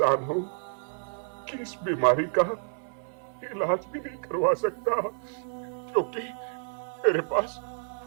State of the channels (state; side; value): silent; left; 58 dB below the other